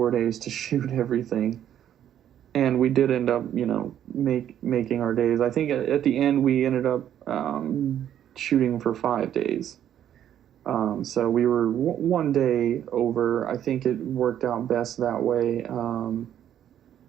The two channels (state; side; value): quieter; left; 10.5 dB